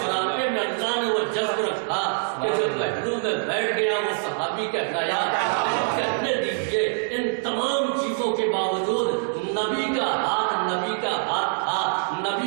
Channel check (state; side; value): silent; left; 62 dB below the other